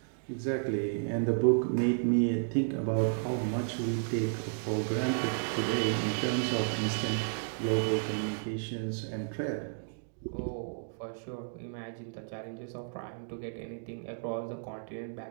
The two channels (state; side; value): silent; left; digital silence